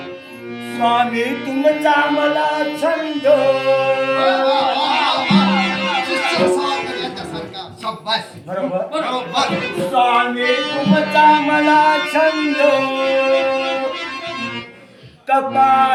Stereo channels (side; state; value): both; identical; correlation 1.00